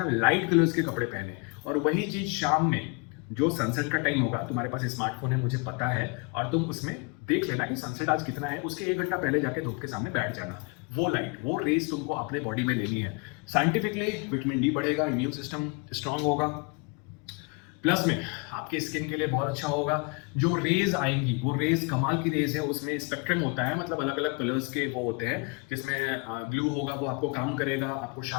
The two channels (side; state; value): right; quieter; 31.4 dB